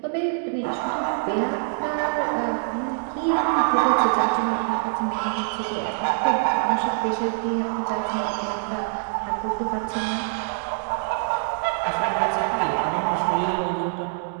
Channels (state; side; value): silent; left; digital silence